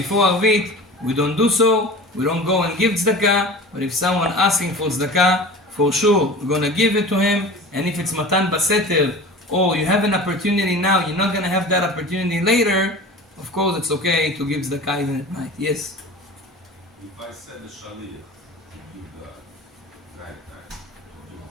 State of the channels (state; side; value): normal; both; correlation 0.36